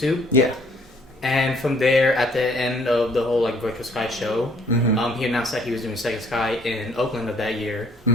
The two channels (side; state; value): both; normal; correlation 0.62